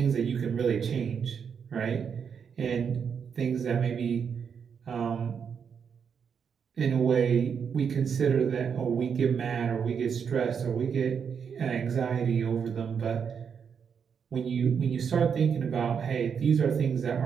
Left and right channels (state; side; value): quieter; left; 6.9 dB